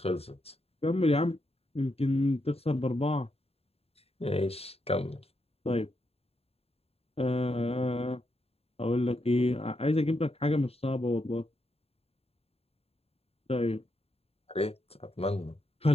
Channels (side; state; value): right; late; 0.29 ms